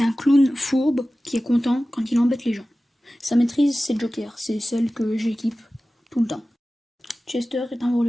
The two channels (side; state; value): both; normal; correlation 0.96